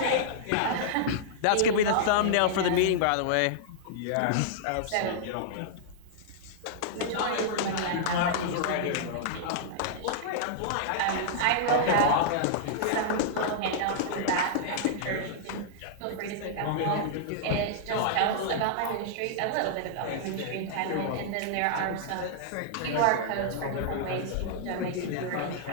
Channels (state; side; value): different; both; correlation -0.02